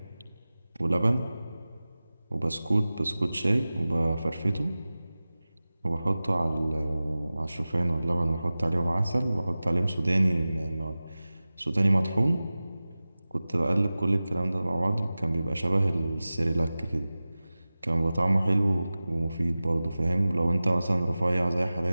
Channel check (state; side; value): inverted; both; correlation -0.97